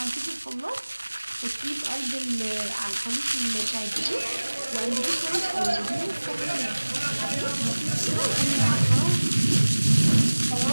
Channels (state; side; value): inverted; both; correlation -1.00